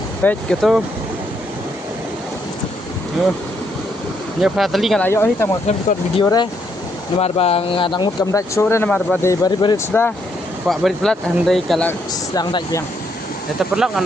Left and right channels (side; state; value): both; normal; correlation 0.74